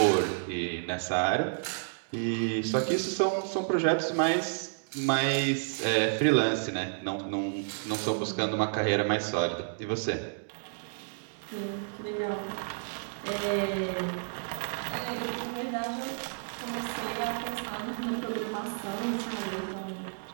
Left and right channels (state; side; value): silent; left; digital silence